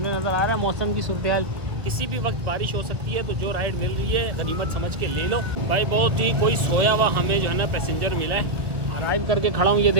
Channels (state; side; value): late; left; 1.0 ms